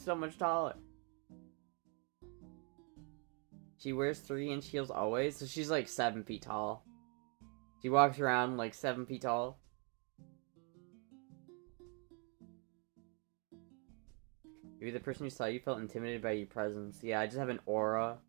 so much taller. She wears 3-inch heels always, so she's like 7 feet tall. She walks around like 7 feet tall. Maybe the person who saw you felt intimidated by your presence. Yeah, I just have an aura.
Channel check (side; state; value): left; quieter; 36.4 dB